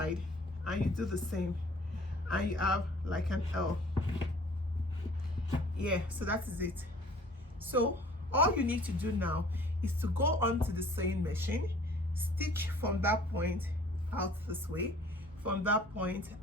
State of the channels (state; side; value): normal; both; correlation 0.52